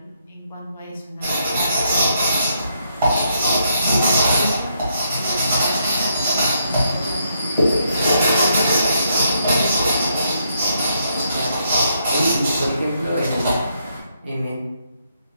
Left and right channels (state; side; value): inverted; both; correlation -0.76